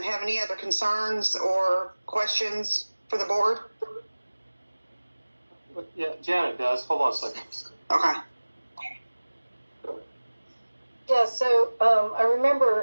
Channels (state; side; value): inverted; both; correlation -1.00